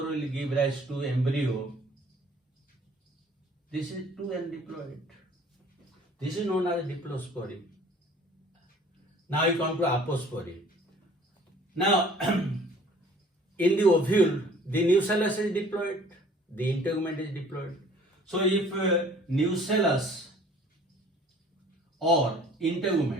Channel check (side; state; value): both; normal; correlation 0.52